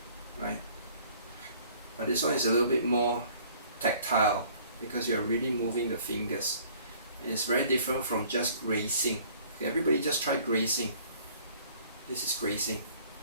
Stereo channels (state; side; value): inverted; both; correlation -0.55